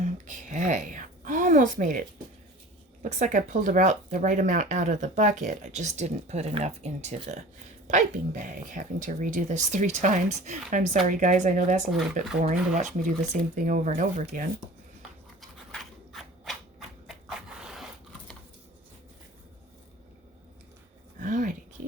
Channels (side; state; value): both; normal; correlation 0.41